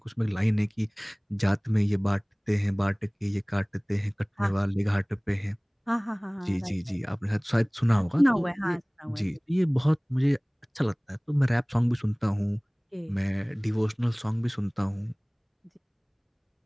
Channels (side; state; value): both; identical; correlation 1.00